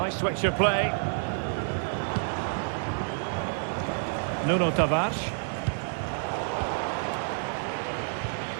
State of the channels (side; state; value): left; silent; 59 dB below the other